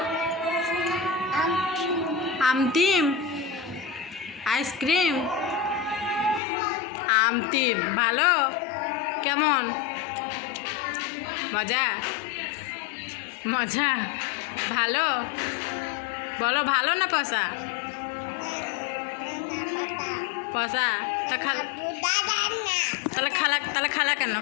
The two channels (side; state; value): right; drops out; at 6.4 s